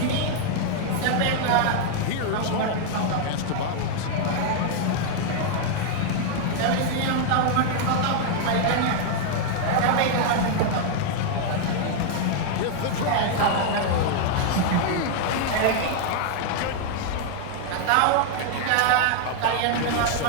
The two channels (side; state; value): both; different; correlation 0.00